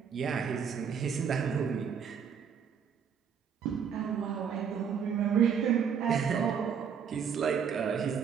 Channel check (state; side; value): quieter; left; 7.2 dB